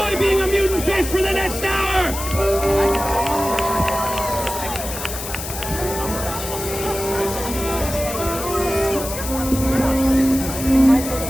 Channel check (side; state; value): left; noise; hiss, 8 dB below the sound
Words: being a mutant fish for the next hour.